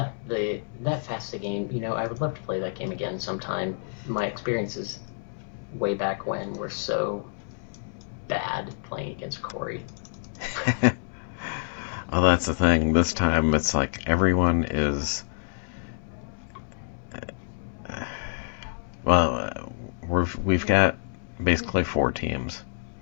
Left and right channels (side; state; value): right; silent; 60 dB below the other